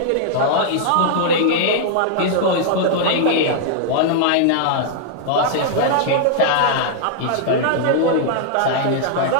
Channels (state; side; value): different; both; correlation -0.01